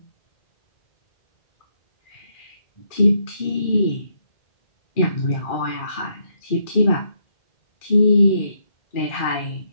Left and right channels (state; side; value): late; right; 2.4 ms